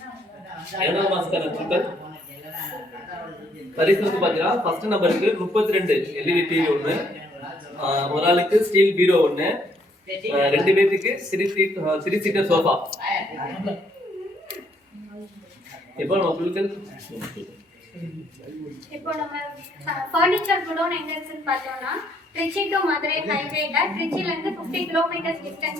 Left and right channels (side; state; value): both; normal; correlation 0.68